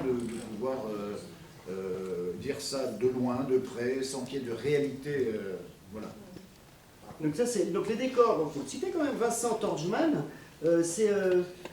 de pouvoir dire ça de loin, de près, sans qu'il y ait de réalité. Voilà. Donc ça c'est donc les décors. Donc vous citez quand même Vincent Torgman. Il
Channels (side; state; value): both; identical; correlation 1.00